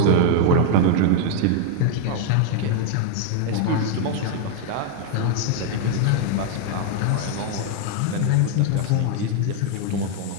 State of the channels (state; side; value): different; both; correlation 0.00